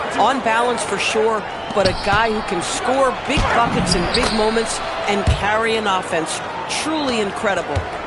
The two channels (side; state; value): both; identical; correlation 1.00